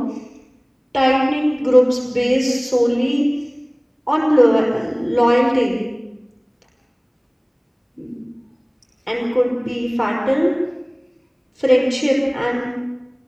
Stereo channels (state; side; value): identical; both; correlation 1.00